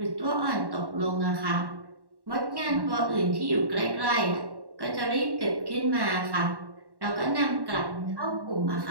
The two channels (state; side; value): late; left; 1.1 ms